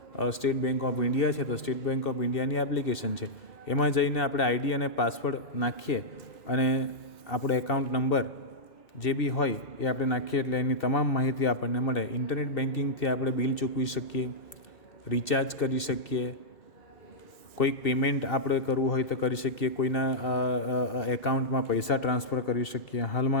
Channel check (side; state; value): right; late; 2.6 ms